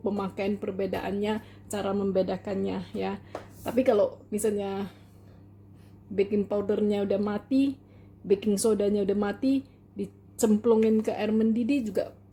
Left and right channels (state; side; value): identical; both; correlation 1.00